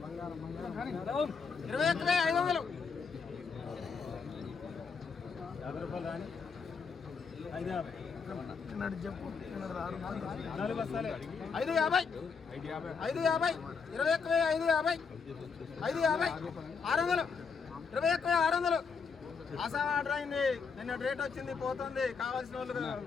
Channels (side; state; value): right; quieter; 5.4 dB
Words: 21,500 50 రూపాయలు రాని 550 చెప్పు 4 బస్తాలే 550 21,550 600 21,600 ఆసాం ఆర్డర్ అయింది. నిన్న రేట్ వచ్చింది పోతుంది. కావాల్సిన వాళ్ళు